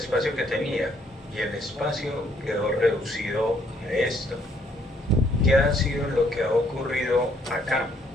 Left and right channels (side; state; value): both; normal; correlation 0.67